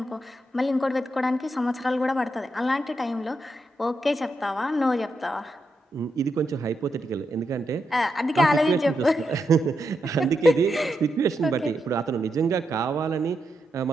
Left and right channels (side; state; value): both; normal; correlation 0.84